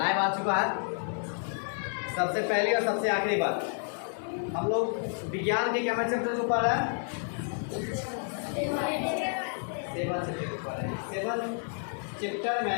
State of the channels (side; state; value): right; silent; 58 dB below the other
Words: आ चुका है। सबसे पहली और सबसे आखिरी बात, हम लोग विज्ञान के क्या चैप्टर के ऊपर है? सेवन चैप्टर